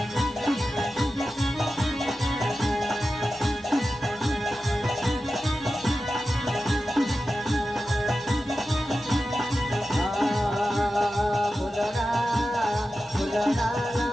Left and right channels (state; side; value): normal; both; correlation 0.92